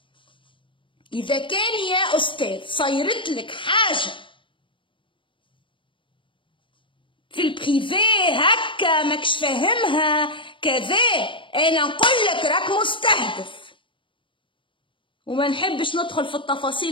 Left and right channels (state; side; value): late; right; 0.25 ms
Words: إذا كان يا أستاذ صيرت لك حاجة في البريفي هكا ماكش فاهمها كذا، أنا نقول لك راك مستهدف. وما نحبش ندخل في